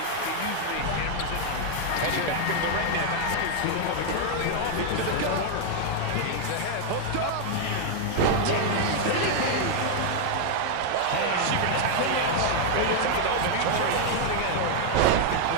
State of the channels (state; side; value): different; both; correlation 0.00